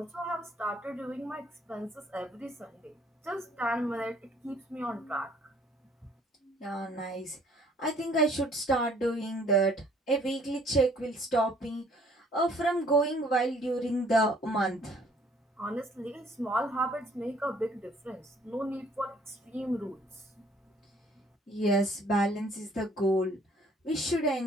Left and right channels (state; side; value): normal; both; correlation 0.59